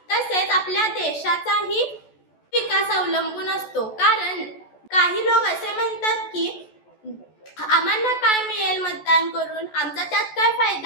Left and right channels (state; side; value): late; right; 14 ms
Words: तसेच आपल्या देशाचाही विकास अवलंबून असतो। कारण काही लोक असे म्हणतात की आम्हाला काय मिळेल मतदान करून, आमचा त्यात काय